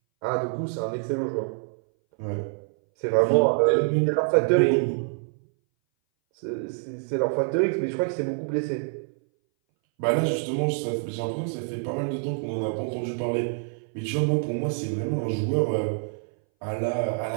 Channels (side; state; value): left; silent; 59 dB below the other